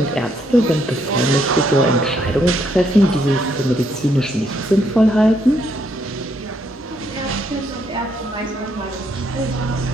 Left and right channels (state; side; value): normal; both; correlation 0.73